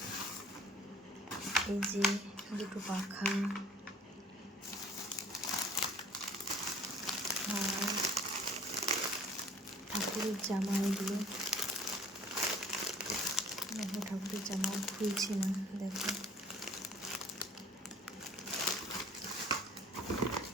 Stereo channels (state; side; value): normal; both; correlation 0.51